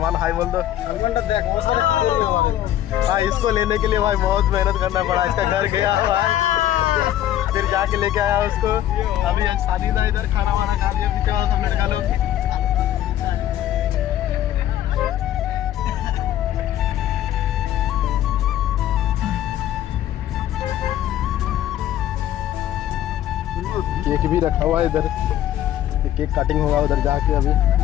हाई बोल दो। सलमान तो देख बहुत सारे भाई इसको लेने के लिए भाई बहुत मेहनत करना पड़ा, इसका घर गया भाई फिर जाके लेके आया उसको। अभी शादी था इधर, खाना वाना खा लिया पीछे वाला सब लड़का लोग। केक भी रखा हुआ है इधर, केक कटिंग होगा उधर जाके। अभी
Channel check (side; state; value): right; quieter; 12.2 dB